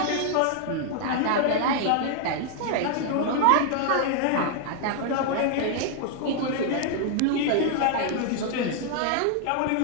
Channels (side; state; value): both; different; correlation 0.00